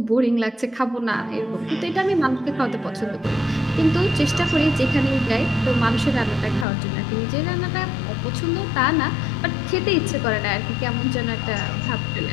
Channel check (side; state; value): right; drops out; at 6.7 s